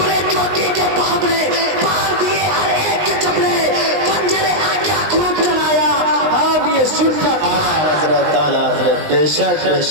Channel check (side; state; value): left; late; 19 ms